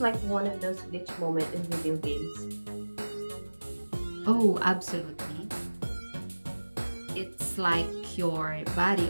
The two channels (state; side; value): inverted; both; correlation -1.00